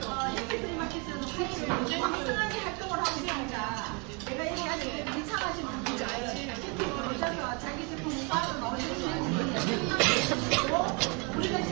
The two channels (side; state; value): left; quieter; 32.6 dB